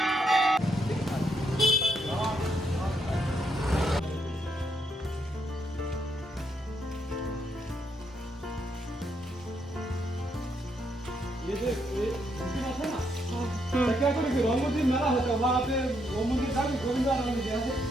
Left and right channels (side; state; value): both; normal; correlation 0.76